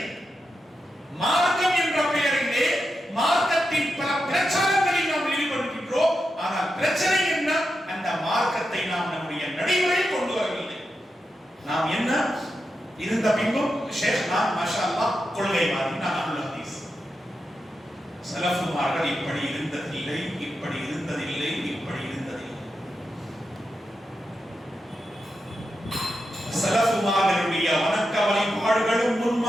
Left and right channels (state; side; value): normal; both; correlation 0.88